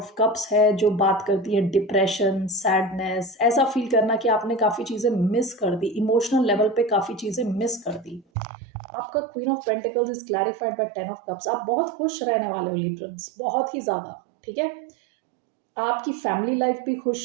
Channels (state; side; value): drops out; left; at 8.2 s